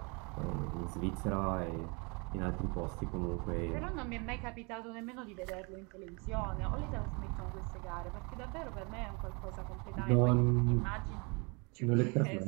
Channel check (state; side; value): quieter; left; 30.8 dB